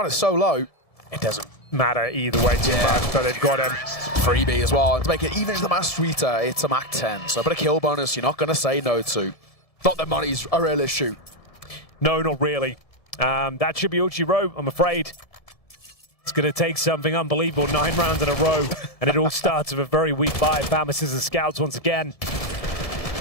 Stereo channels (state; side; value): late; right; 1.7 ms